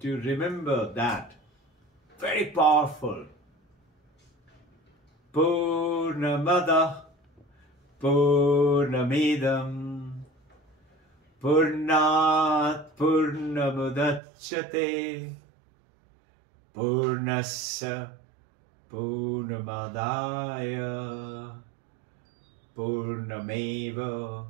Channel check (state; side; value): drops out; left; at 14.2 s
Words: to remember that. Very powerful. Purnamada Purnamidam Purnat Purnamudachyate Purnasya Purnamadaya Purnameva